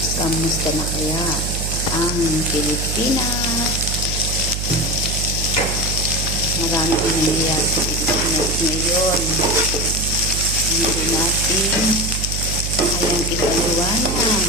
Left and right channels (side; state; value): right; noise; hum, 3 dB below the sound